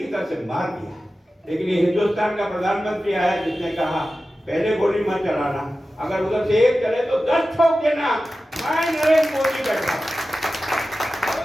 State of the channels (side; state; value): both; normal; correlation 0.94